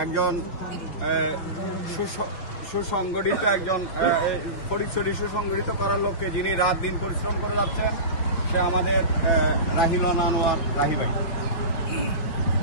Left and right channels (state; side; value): late; right; 6.0 ms